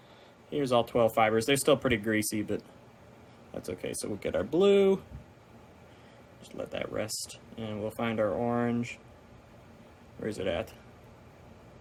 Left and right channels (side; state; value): both; identical; correlation 1.00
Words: Here's all 12 fibers. They're still pretty greasy, but that's okay. So we'll get our blue. Just let that rest. And we'll find our orange. Where is it at?